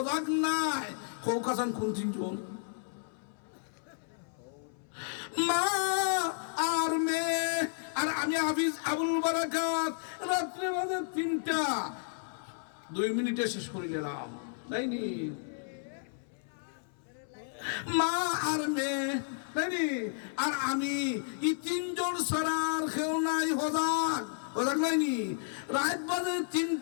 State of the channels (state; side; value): silent; right; 56 dB below the other